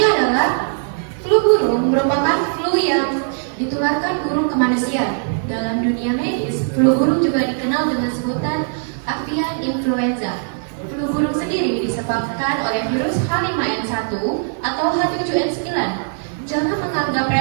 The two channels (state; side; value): silent; left; 66 dB below the other